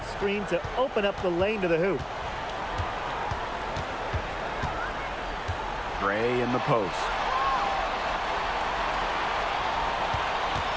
screen to open up the lane to the hoop. Gray in the post.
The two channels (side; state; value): both; identical; correlation 1.00